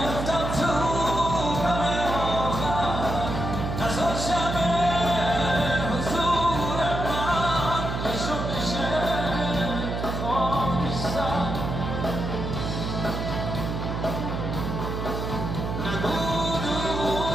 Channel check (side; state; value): right; noise; hum, 3 dB below the sound